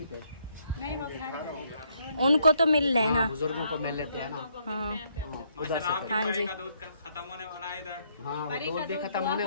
पे? उनको तो मिल रहे हैं। हाँ, हाँ बुजुर्गों को मिल लेते हैं ना। हाँ उधर से फिर। हाँ जी। हाँ वो दूध भी खत्म होने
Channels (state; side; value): inverted; both; correlation -0.71